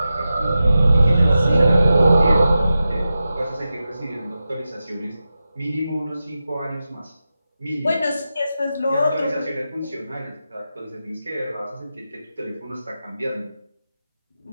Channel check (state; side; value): inverted; both; correlation -0.92